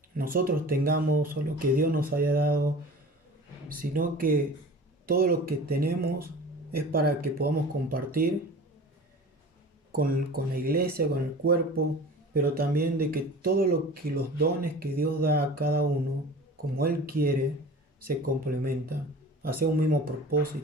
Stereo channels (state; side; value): normal; both; correlation 0.39